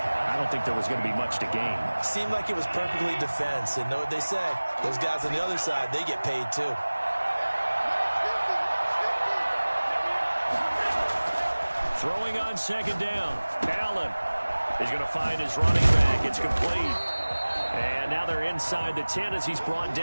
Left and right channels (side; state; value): both; inverted; correlation -1.00